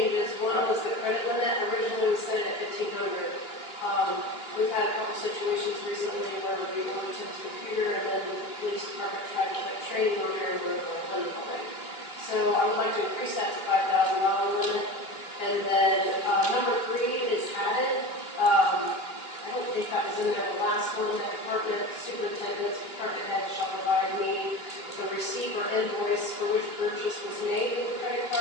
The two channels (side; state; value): right; late; 3.0 ms